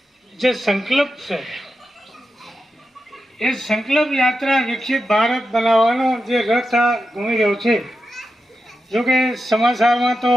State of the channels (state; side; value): normal; both; correlation 0.89